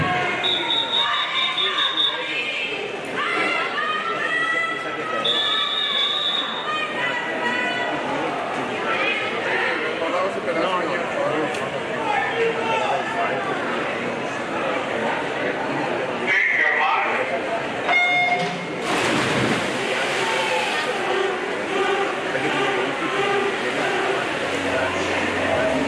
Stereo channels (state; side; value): identical; both; correlation 1.00